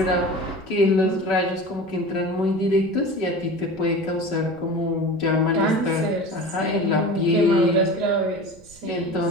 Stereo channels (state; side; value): noise; right; rumble, 26 dB below the sound